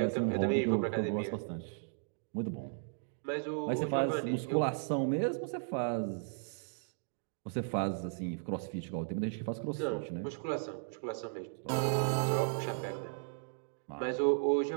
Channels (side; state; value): left; silent; digital silence